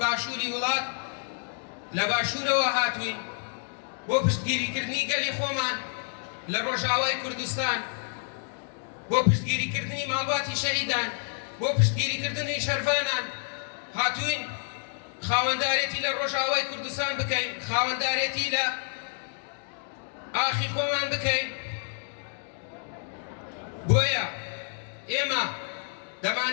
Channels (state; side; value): silent; right; 59 dB below the other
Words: وڵات لە باشوورەوە هاتوین بۆ پشتگیریکردنی گەلی خۆمان لە ڕۆژاوای کوردستان، بۆ پشتگیریکردنی ماڵباتی شەهیدان، بۆ پشتگیریکردنی شەرفانان هاتوین خاوەندارێتی لە ڕۆژاوای کوردستان بکەین، خاوەندارێتی لە ئاخی خۆمان بکەین. بۆیە ئێمە